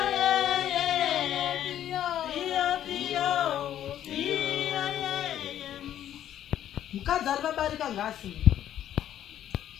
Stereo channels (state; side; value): quieter; right; 11.2 dB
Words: Mukadzi ari vabarika ngasi.